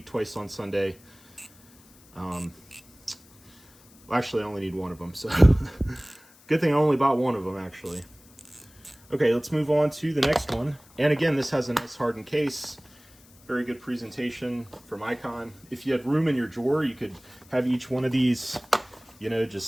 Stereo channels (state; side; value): noise; left; hiss, 27 dB below the sound